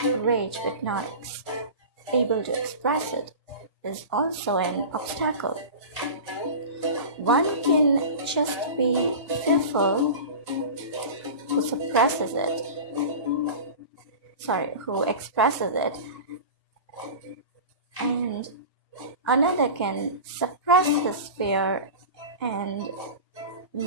rage but not able to express it is also an obstacle. One can just be fearful who expresses it, and another can suppress his fear and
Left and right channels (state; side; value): inverted; both; correlation -0.31